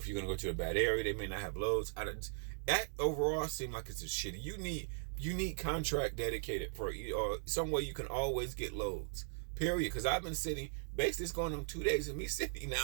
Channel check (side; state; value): left; silent; digital silence